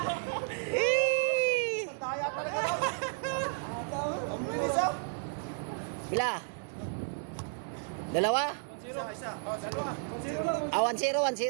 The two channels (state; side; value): silent; left; digital silence